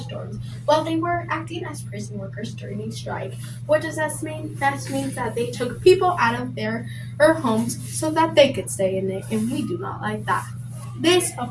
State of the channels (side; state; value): both; identical; correlation 1.00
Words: dorms while they were acting as prison workers during a strike. What does that mean? That means that they took people out of their homes so that they could stay in it, and we do not like that. This,